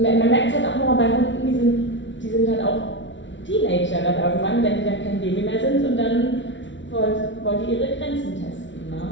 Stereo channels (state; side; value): late; right; 0.55 ms